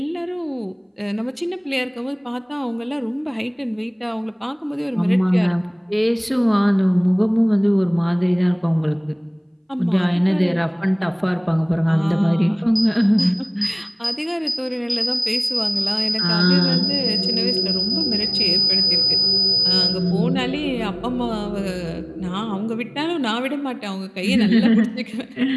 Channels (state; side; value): identical; both; correlation 1.00